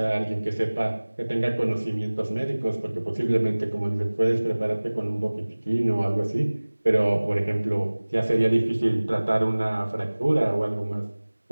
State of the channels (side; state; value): both; inverted; correlation -1.00